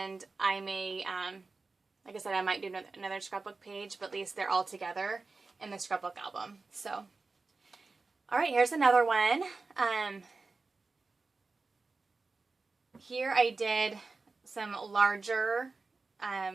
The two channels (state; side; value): quieter; left; 3.9 dB